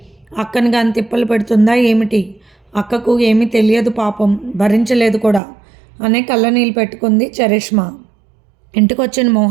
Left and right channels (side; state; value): left; drops out; at 5.4 s